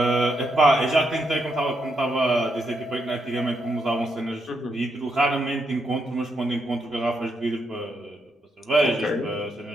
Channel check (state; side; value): normal; both; correlation 0.79